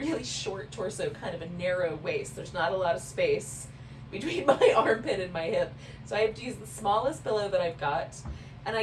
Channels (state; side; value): identical; both; correlation 1.00